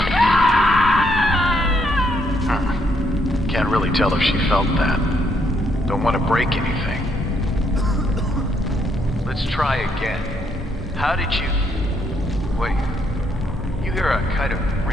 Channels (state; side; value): normal; both; correlation 0.73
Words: Can't really tell if she felt that. Don't want to break anything. Let's try again. How did you... Wait. You hear a kind of